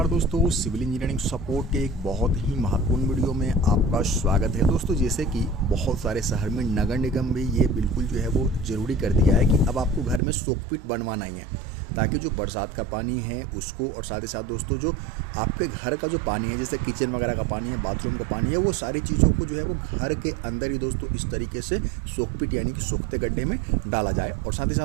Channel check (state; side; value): drops out; left; at 10.2 s